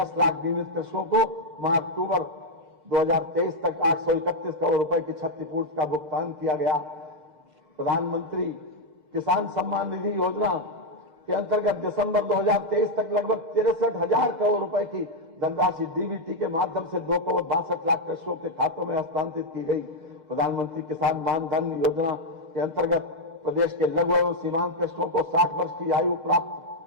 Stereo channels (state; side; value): late; left; 2.0 ms